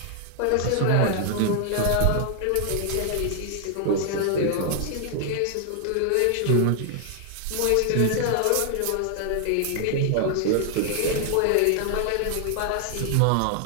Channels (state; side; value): different; both; correlation 0.00